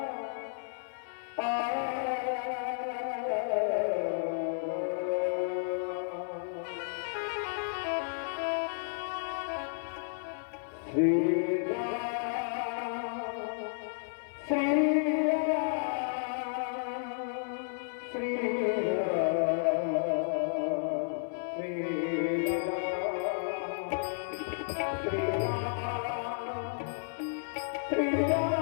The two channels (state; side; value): silent; right; 56 dB below the other